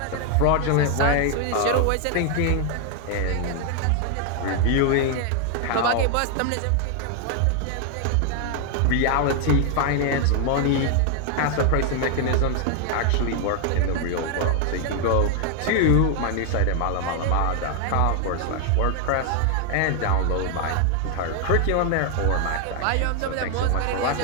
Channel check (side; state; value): both; different; correlation 0.00